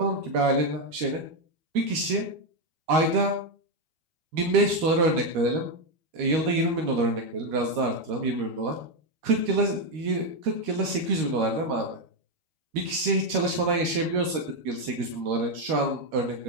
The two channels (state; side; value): late; left; 13 ms